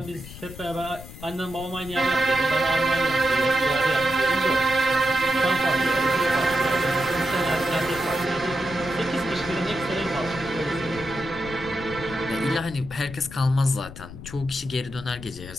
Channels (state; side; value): noise; left; rumble, 14 dB below the sound